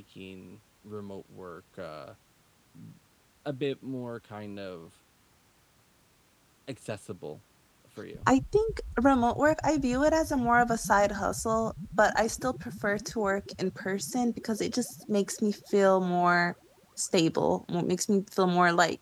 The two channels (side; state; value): both; identical; correlation 1.00